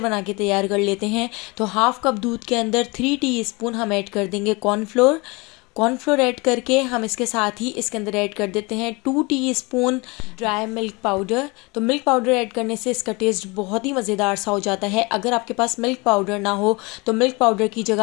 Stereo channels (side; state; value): right; quieter; 26.3 dB